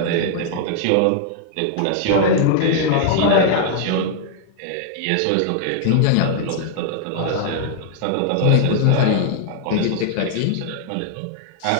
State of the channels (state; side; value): different; both; correlation -0.01